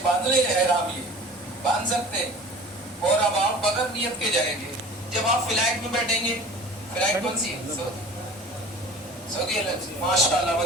बांध ले एहराम, ये बांध सकते हैं। और अब आप बगैर नियत के जाएंगे, जब आप फ्लाइट में बैठेंगे, फ्लाइट कौन सी है, सऊदी एयरलाइंस, माशाल्लाह,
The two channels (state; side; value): normal; both; correlation 0.42